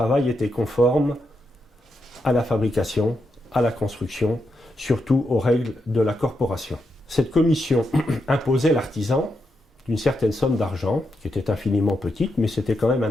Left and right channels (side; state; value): both; normal; correlation 0.84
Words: était conforme à la fabrication, à la construction, surtout aux règles de la corporation. Cette commission imposait l'artisan d'une certaine somme d'argent, qui était infiniment petite, mais c'était quand même